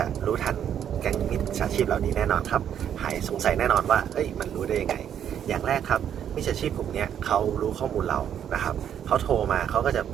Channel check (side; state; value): left; quieter; 9.3 dB